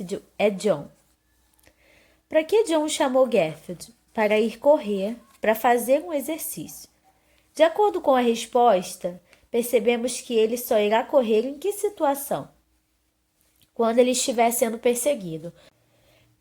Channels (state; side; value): identical; both; correlation 1.00